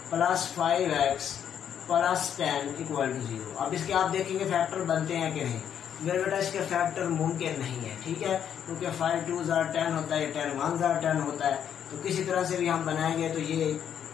+ 5x + 10 = 0। अब इसके आप देखेंगे फैक्टर बनते हैं कि नहीं। मेरे बेटा इसके फैक्टर मुमकिन नहीं है। ठीक है, क्योंकि 5 2 = 10 होता है, 10 1 = 10 होता है, तो किसी तरह से भी हम बनाएंगे तो ये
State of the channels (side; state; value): right; quieter; 8.9 dB